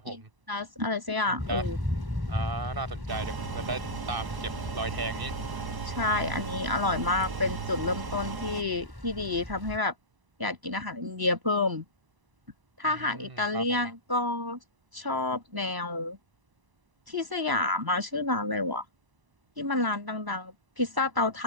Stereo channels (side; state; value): left; late; 1.0 ms